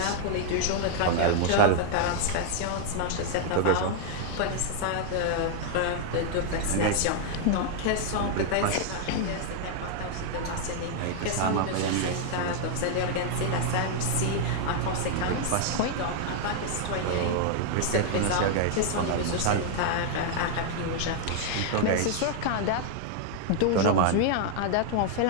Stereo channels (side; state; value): both; different; correlation 0.00